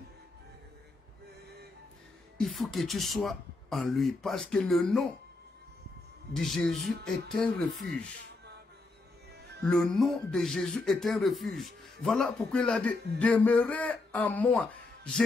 Il faut que tu sois en lui, parce que le nom de Jésus est un refuge. Le nom de Jésus est un refuge. Voilà pourquoi il a dit, demeurez en moi.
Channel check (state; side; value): quieter; right; 3.3 dB